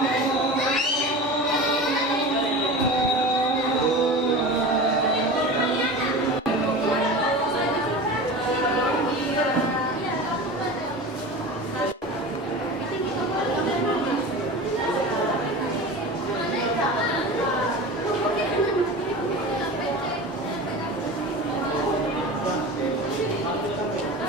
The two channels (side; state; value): both; normal; correlation 0.32